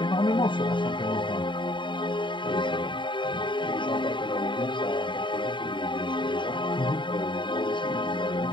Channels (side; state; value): right; late; 0.23 ms